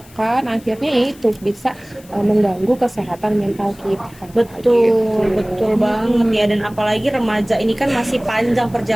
akhirnya itu bisa mengganggu kesehatan mental kita. Betul, betul banget ya. Dan apalagi remaja ini kan masih panjang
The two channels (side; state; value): left; noise; hiss, 25 dB below the sound